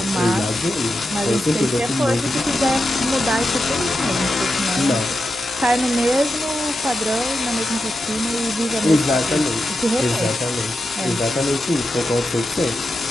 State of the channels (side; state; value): both; normal; correlation 0.88